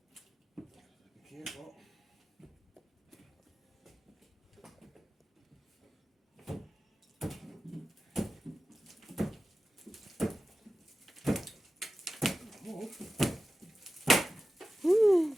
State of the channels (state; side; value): normal; both; correlation 0.94